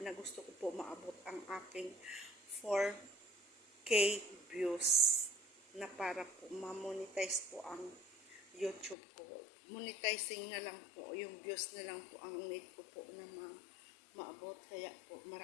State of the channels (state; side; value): drops out; right; at 9.0 s